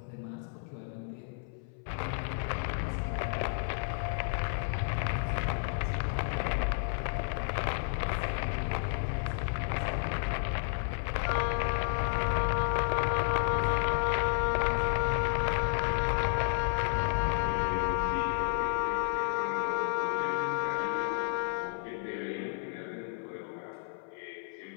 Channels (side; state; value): right; silent; 57 dB below the other